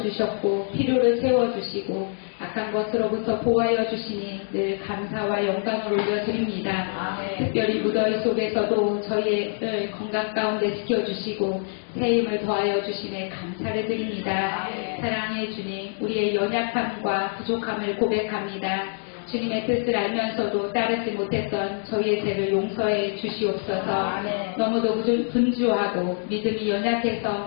필요를 채워주시고 악한 것으로부터 보호하여 주시니 늘 감사와 영광을 올려드립니다. 특별히 무더위 속에서도 저희의 건강 가운데 지켜주시고 새 힘을 더하여 주시네 감사를 드립니다. 사랑의 주님, 우리의 연약함과 부족함을 고백합니다. 주님의 뜻을 알면서도 따르지 못했던 저희의 죄를 용서해 주시옵소서. 너무도 분주하고 믿음이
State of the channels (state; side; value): silent; right; digital silence